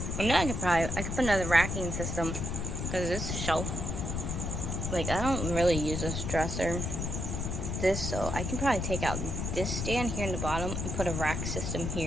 I know I could put another racking system. Because this shelf, like, I don't really use this dresser. So I can probably take out this stand here in the bottom and put a rack system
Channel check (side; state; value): left; noise; rumble, 3 dB below the sound